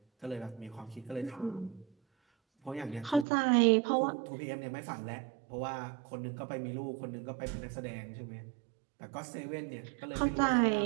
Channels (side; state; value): left; drops out; at 3.2 s